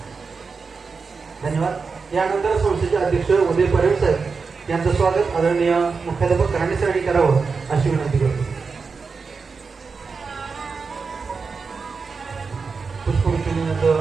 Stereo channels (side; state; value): left; quieter; 4.9 dB